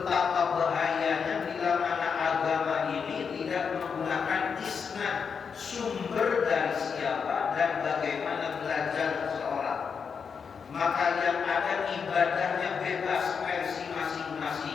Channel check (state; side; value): quieter; right; 6.2 dB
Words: bahayanya bila mana agama ini tidak menggunakan isnad, sumber dari siapa dan bagaimana belajar seseorang. Maka yang ada ibadahnya bebas versi